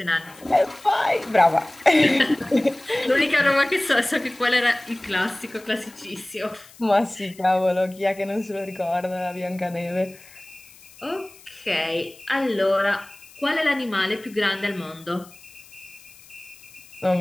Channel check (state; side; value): noise; left; hiss, 23 dB below the sound